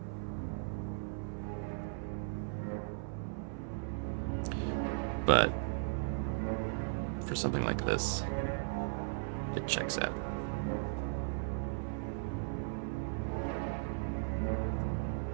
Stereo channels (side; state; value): left; silent; 53 dB below the other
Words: But for something like this, it checks out.